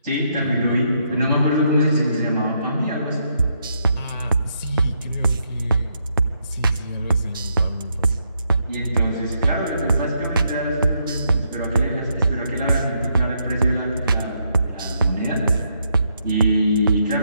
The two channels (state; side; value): inverted; both; correlation -0.77